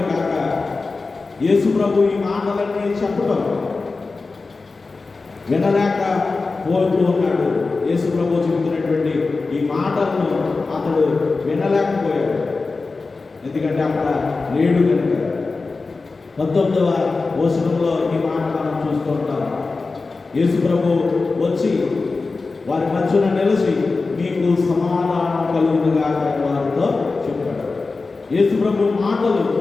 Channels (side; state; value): right; quieter; 3.9 dB